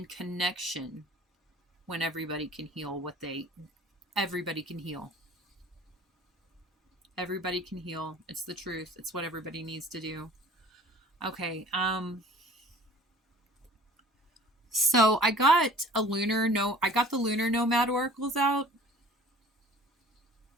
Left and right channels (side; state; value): both; normal; correlation 0.48